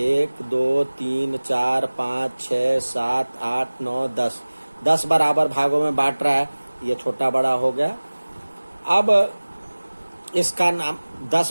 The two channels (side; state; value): both; inverted; correlation -1.00